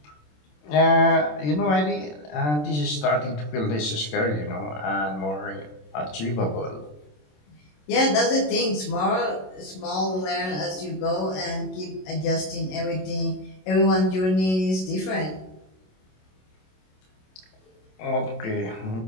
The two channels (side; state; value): right; late; 27 ms